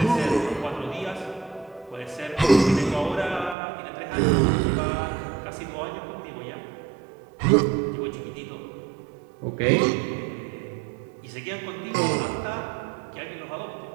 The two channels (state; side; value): drops out; left; at 3.6 s